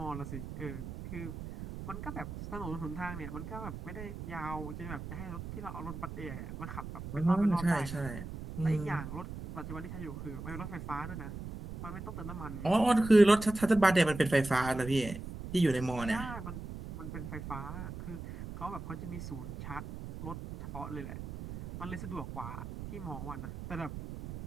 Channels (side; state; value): right; noise; rumble, 9 dB below the sound